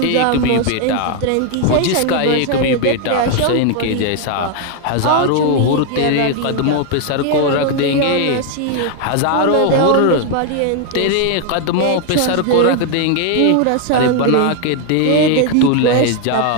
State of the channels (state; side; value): different; both; correlation 0.01